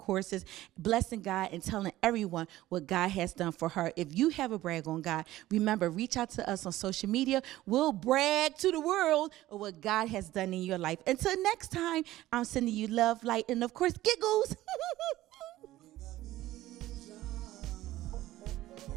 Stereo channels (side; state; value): left; quieter; 15.6 dB